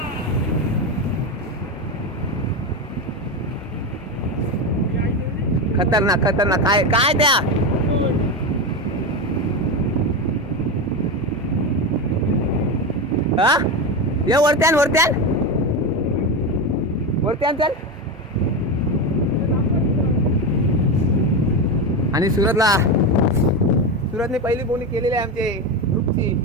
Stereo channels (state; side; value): normal; both; correlation 0.16